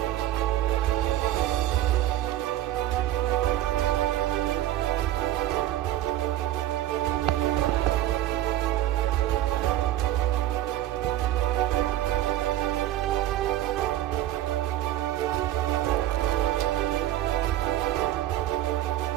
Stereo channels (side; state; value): left; quieter; 13.3 dB